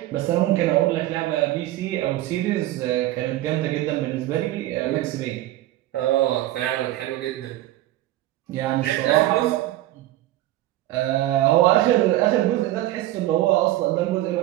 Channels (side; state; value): left; quieter; 15.3 dB